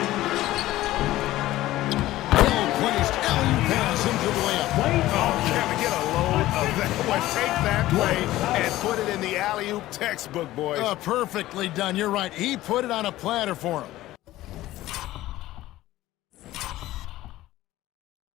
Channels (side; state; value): right; quieter; 15.8 dB